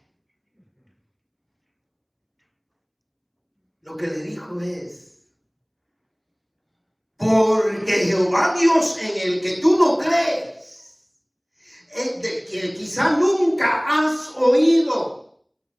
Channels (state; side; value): identical; both; correlation 1.00